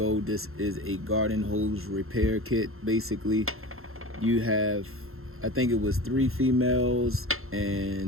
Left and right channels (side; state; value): left; late; 0.61 ms